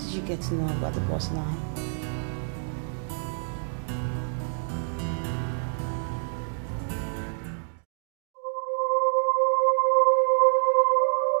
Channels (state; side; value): silent; left; digital silence